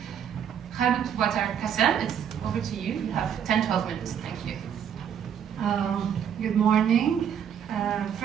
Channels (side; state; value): left; quieter; 8.6 dB